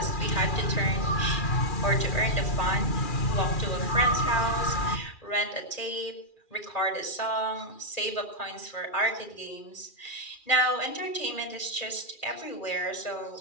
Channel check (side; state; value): right; late; 2.4 ms